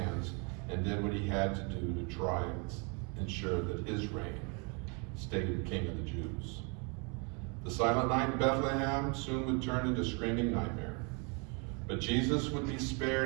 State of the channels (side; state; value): left; quieter; 33.8 dB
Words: and did what he had to do to try and ensure that his reign stayed king of the Jews. The silent night in Bethlehem soon would turn into a screaming nightmare. But Jesus would be